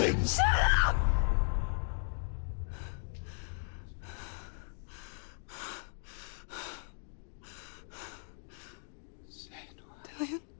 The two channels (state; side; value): silent; right; digital silence